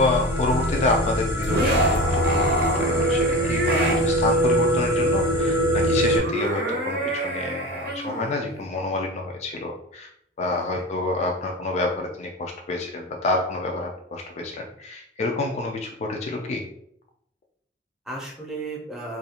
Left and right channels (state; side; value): normal; both; correlation 0.29